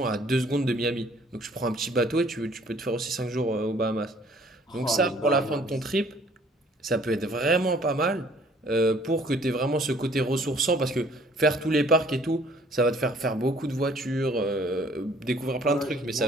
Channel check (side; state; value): both; normal; correlation 0.58